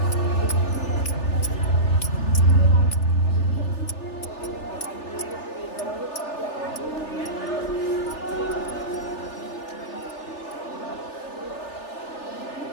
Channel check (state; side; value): late; right; 3.4 ms